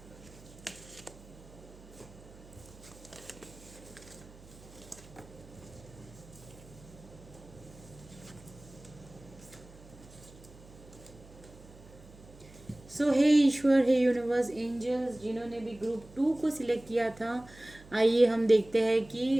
सो हे ईश्वर, हे यूनिवर्स, एंजल्स, जिन्होंने भी ग्रुप 2 को सिलेक्ट किया था, आइए हम देखते हैं कि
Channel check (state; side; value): noise; right; hum, 21 dB below the sound